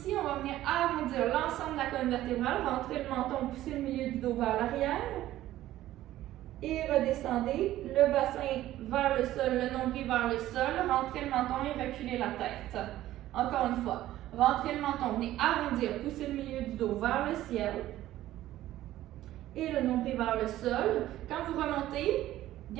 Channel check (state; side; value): quieter; left; 14.3 dB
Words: on va venir arrondir l'ensemble de la colonne vertébrale, rentrer le menton, pousser le milieu du dos vers l'arrière. Et redescendez le bassin vers le sol, le nombril vers le sol, rentrez le menton et reculez la tête. Encore une fois, rentrez le menton, venez arrondir, pousser le milieu du dos vers le ciel et le nombril vers le sol. Quand vous remontez,